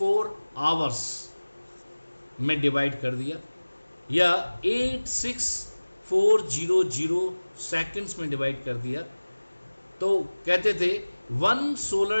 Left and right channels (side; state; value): both; inverted; correlation -1.00